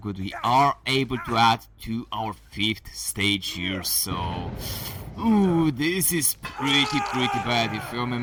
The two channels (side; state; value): both; identical; correlation 1.00